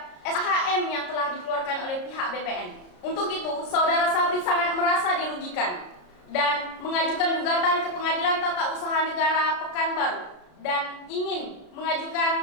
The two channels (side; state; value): right; late; 33 ms